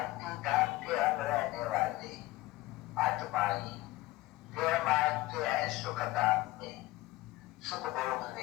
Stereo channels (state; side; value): quieter; right; 18.4 dB